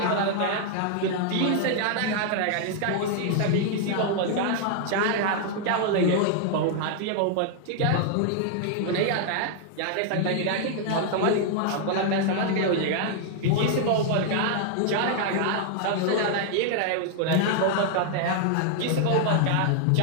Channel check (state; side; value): different; both; correlation 0.00